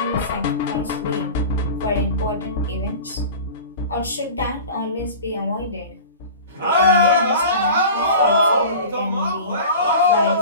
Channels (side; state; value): both; inverted; correlation -0.37